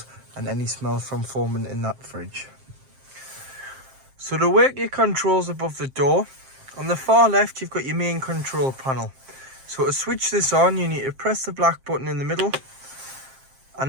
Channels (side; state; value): left; late; 7.6 ms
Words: and any smell from forming in that fridge. So to work your controls above the door, On the far left, you've got your main control panel. So to switch this on, you need to press the black button in the middle.